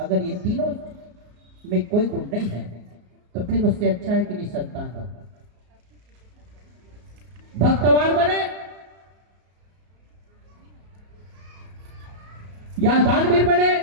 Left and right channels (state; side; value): late; left; 34 ms